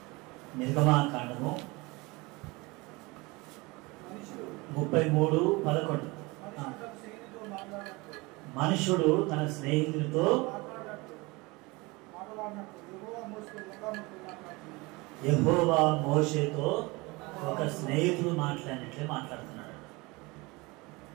నిర్గమాకాండము 33:11. మనుషుడు తన స్నేహితుడితో యెహోవా మోషేతో ఒక స్నేహితుడు మాట్లాడినట్లే మాట్లాడుతున్నాడు.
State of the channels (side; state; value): left; quieter; 24.4 dB